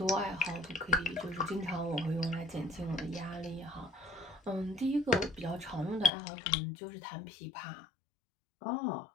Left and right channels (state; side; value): drops out; right; at 6.1 s